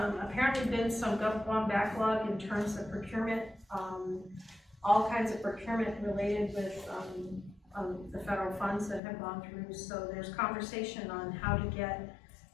been some GovGuam backlog in terms of procurement, all kinds of procurement related with the federal funds that have gone through. So there's conversation on how to get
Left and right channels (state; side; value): drops out; right; at 9.0 s